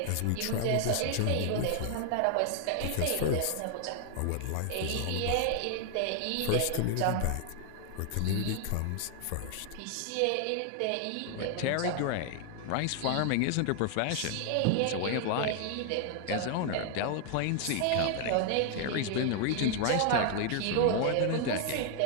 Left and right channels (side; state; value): both; different; correlation 0.00